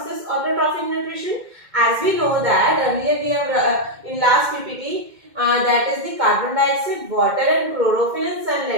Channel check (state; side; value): late; left; 2.1 ms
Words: is autotrophic nutrition। as we know that earlier we have in last ppt that is the carbon dioxide, water and chlorophyll and